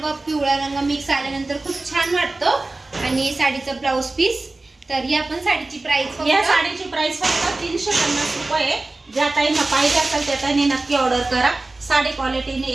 पिवळा रंग मिक्स आल्यानंतर खूप छान वाटतो. आणि साडीचं ब्लाउज पीस. तर ही आपण साडीची प्राइस, या साडीची प्राइस फक्त 350 रुपये. ज्या ताईंना पाहिजे असेल त्या ताईंनी नक्की ऑर्डर करा. साडी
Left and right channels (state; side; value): quieter; left; 3.1 dB